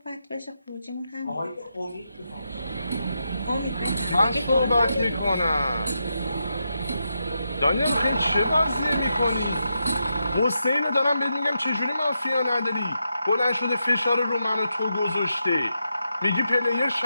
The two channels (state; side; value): inverted; both; correlation -0.85